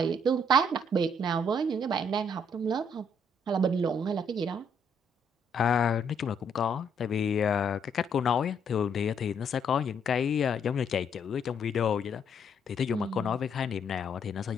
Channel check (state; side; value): normal; both; correlation 0.70